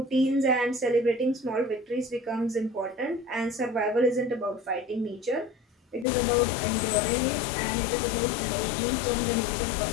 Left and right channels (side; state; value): right; drops out; at 6.1 s